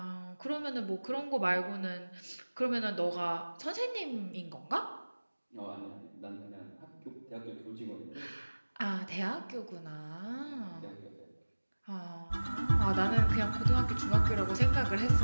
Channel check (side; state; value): both; inverted; correlation -1.00